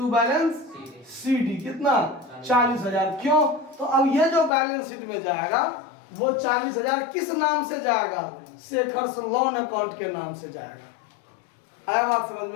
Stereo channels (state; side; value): drops out; right; at 4.5 s